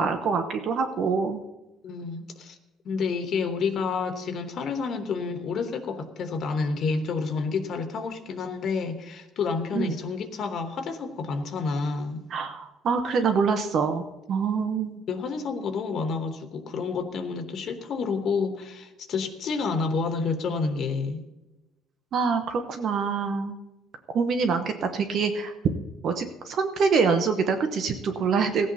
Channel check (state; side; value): normal; both; correlation 0.62